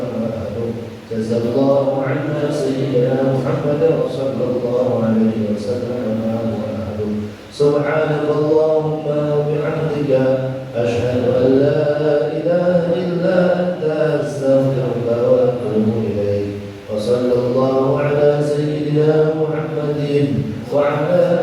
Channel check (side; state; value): both; identical; correlation 1.00